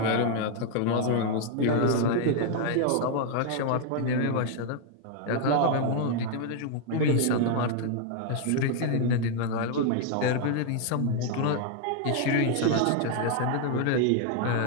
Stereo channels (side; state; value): both; different; correlation 0.00